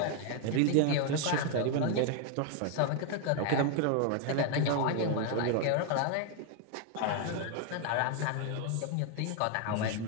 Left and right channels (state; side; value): different; both; correlation 0.00